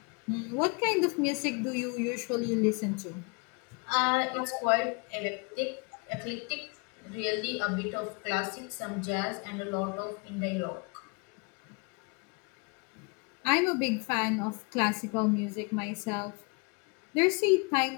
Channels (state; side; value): quieter; right; 32.5 dB